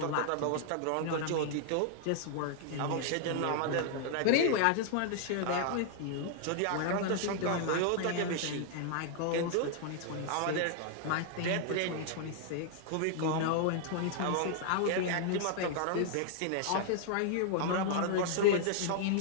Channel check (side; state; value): both; different; correlation -0.01